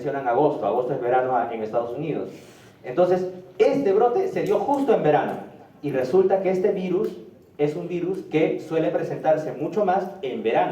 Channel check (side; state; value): both; identical; correlation 1.00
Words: agosto. Agosto es verano en Estados Unidos. Entonces, este brote se dio justo en verano y resulta que este virus es un virus que suele presentarse mucho más en